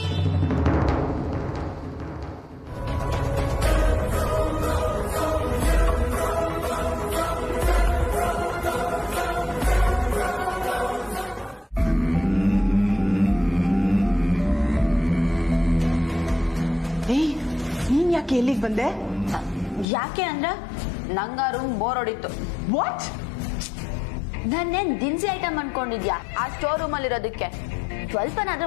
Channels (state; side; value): drops out; right; at 19.9 s